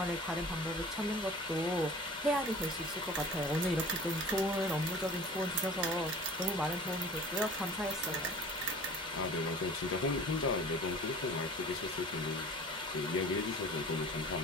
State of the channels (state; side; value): normal; both; correlation 0.42